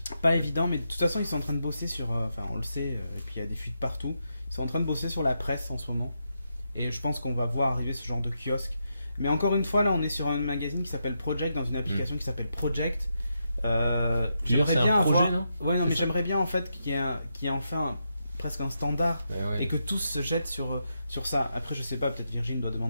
Pas évident, mais de toute façon, ils sont en train de bosser sur. Enfin, on le sait, et puis il y a des fuites partout. Ils sont en train de bosser sur la presse en ce moment. Et je pense qu'on va voir arriver ce genre de kiosque. Mais encore une fois, là, on est sur un magazine qui s'appelle Project, dans une application qui s'appelle Project. J'aimerais bien projet, non? Ouais, non, mais j'aimerais bien en fait qu'il y ait enfin presque un standard et que tous se jettent sur ça. Après, je sais pas, peut-être Virgin doit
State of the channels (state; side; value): inverted; both; correlation -0.84